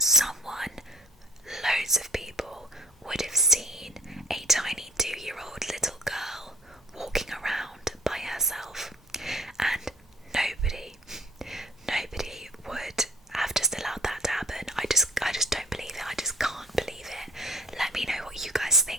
Loads of people would have seen a tiny 2-year-old little girl walking around by herself, and nobody would have just allowed that to happen. I just don't believe it. I just can't believe it. Let me know what you guys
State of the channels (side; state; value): both; normal; correlation 0.51